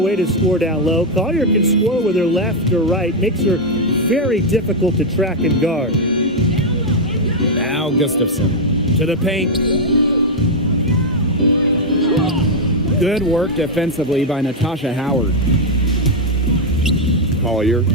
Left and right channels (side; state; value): both; normal; correlation 0.00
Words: to score down low. Collier can score with her left or right. Makes her very difficult to track and guard. Now Gustafson to the paint. Good work defensively by Natasha Howard. Collier.